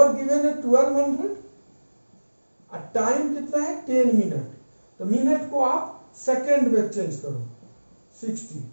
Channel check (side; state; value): both; inverted; correlation -1.00